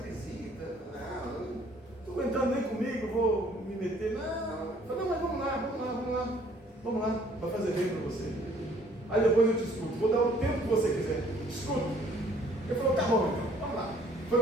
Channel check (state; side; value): normal; both; correlation 0.60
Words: visita, não estou aguentando nem comigo, vou me meter. Não. Eu falei: não, mas vamos lá, vai fazer bem para você. Aí depois eu te escuto, vou dar o tempo que você quiser, escuta. Ele falou: tá bom, então, vamos lá.